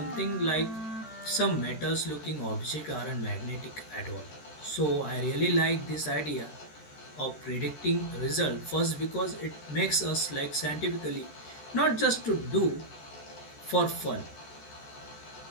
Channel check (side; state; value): right; late; 13 ms